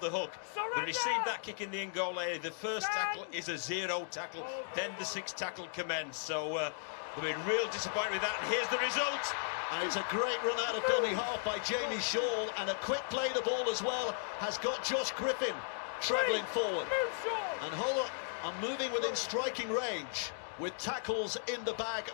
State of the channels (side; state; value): right; silent; digital silence